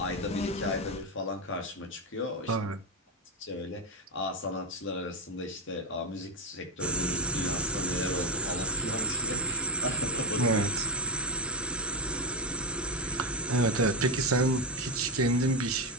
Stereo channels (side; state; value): both; normal; correlation 0.01